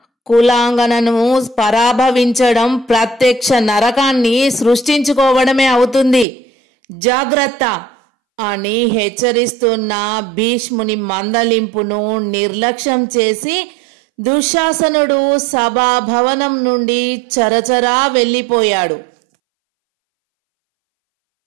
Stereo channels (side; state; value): left; drops out; at 6.2 s